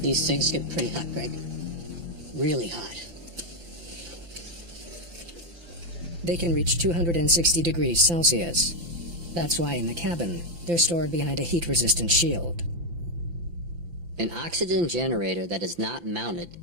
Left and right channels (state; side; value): late; left; 5.9 ms